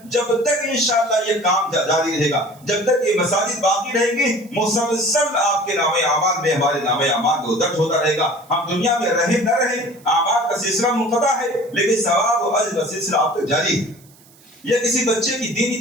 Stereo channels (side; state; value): right; noise; hiss, 27 dB below the sound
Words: جب تک انشاءاللہ یہ کام جاری رہے گا، جب تک یہ مساجد باقی رہیں گی، مسلسل آپ کے نام اعمال میں ہمارے نام اعمال کو درج ہوتا رہے گا۔ ہم دنیا میں رہیں نہ رہیں، اعمال کا سلسلہ منقطع ہے، لیکن ثواب و اجر کا سلسلہ آپ تک جاری ہے۔ یا کسی بچے کی دینی